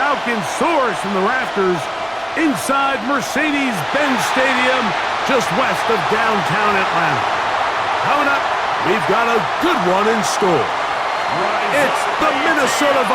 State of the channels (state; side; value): identical; both; correlation 1.00